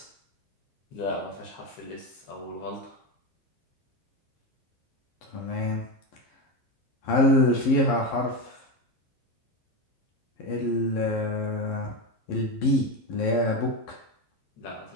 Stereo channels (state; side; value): late; right; 11 ms